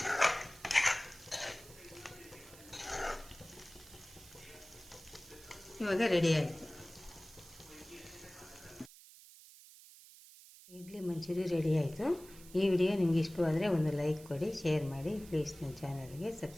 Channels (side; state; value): right; noise; hiss, 20 dB below the sound